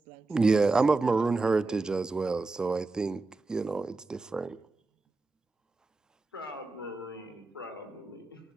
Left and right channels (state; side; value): quieter; left; 3.5 dB